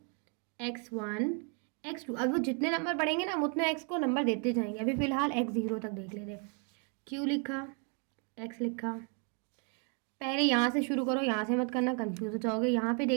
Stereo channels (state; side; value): quieter; left; 36.6 dB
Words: x1, x2, अब वो जितने नंबर बढ़ेंगे ना हम उतने x को नंबर देते जाएंगे। अभी फ़िलहाल x0 तक देख लेते हैं। q लिखा, x लिखा, पहले यहाँ से शुरू करो, यहाँ से मत करना, कंफ्यूज हो जाओगे। यहाँ पे